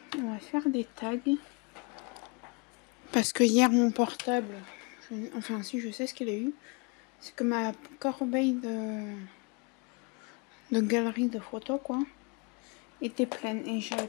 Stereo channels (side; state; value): right; quieter; 31.1 dB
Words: On va faire des tags. Parce que hier, mon portable... Enfin, si, je sais ce qu'il a eu. C'est que ma corbeille de galerie de photos, quoi, était pleine. Et j'avais